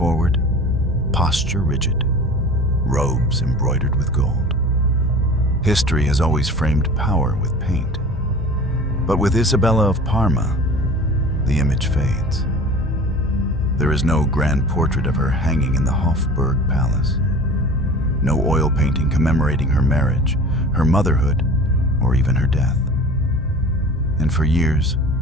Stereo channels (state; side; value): normal; both; correlation 0.40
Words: posture rigid, robes embroidered with gold. History has always framed power with paint. But with Isabella of Parma, the image fades. There is no grand portrait of her hanging in the Hofburg Palace. No oil painting commemorating her marriage, her motherhood, or even her death. And for years,